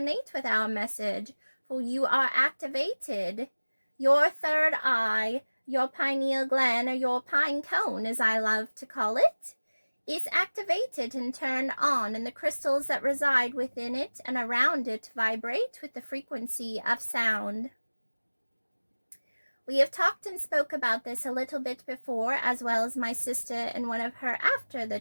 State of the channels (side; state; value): both; inverted; correlation -1.00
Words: with our message, for you are activated. Your third eye, your pineal gland, or your pine cone, as I love to call it, is activated and turned on, and the crystals that reside within it and around it vibrate with the frequency of sound. We have talked and spoke about this a little bit before, as well as my sister in one of her After the